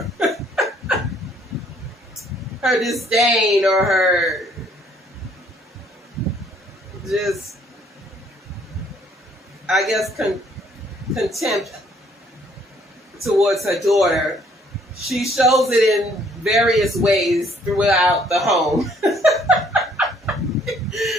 her disdain or her just, I guess, contempt towards her daughter. She shows it in various ways throughout the home.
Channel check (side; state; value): both; normal; correlation 0.63